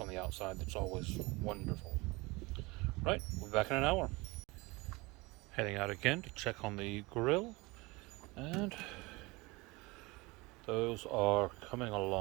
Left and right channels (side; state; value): left; quieter; 23.9 dB